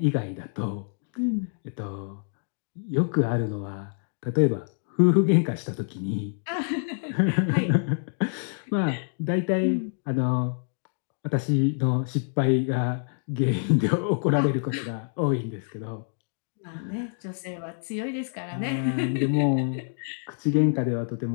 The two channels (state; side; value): silent; right; digital silence